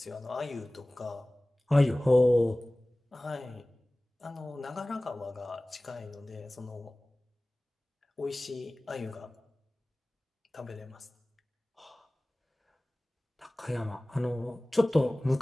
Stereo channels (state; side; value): normal; both; correlation 0.98